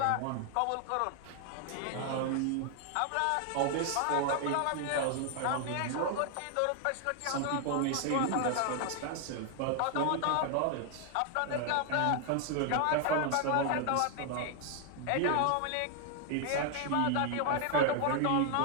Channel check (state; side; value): different; both; correlation 0.00